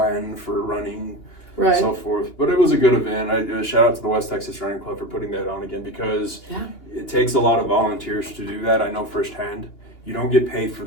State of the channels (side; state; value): right; late; 2.8 ms